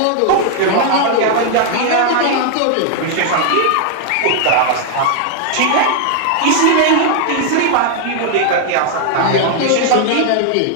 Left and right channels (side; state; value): both; different; correlation 0.00